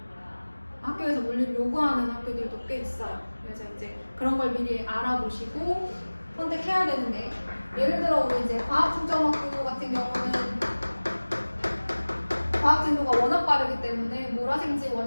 학교에서 물리를 요구하는 학교들도 꽤 있어요. 그래서 이제 그런 걸 미리 알아보시고 선택해야 되는데, 예를 들어 우리 이제 과학중점학교 같은 경우는 속도가 워낙 빠르기 때문에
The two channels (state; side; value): inverted; both; correlation -1.00